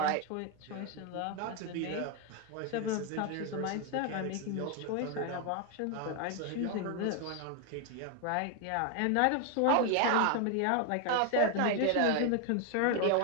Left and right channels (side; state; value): both; different; correlation 0.01